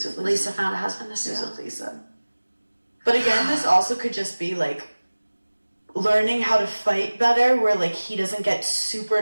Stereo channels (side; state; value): both; inverted; correlation -1.00